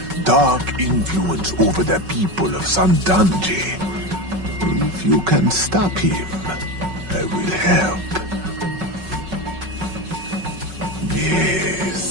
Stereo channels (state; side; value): late; left; 5.4 ms